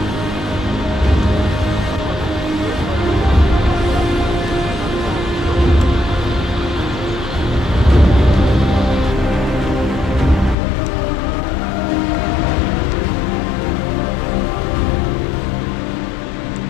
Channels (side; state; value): right; drops out; at 10.6 s